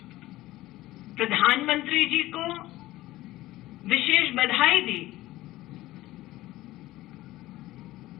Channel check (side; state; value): right; quieter; 16.9 dB